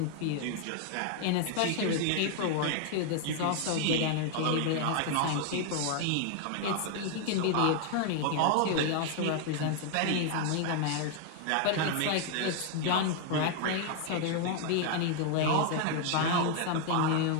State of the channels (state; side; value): different; both; correlation 0.00